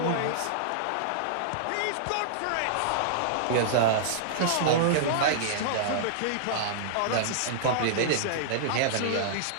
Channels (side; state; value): both; different; correlation -0.02